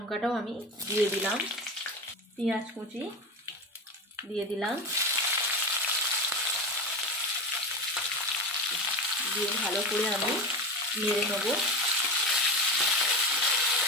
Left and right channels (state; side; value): normal; both; correlation 0.23